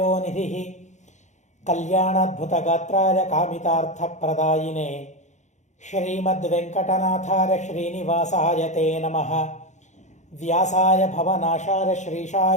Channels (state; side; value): late; right; 0.34 ms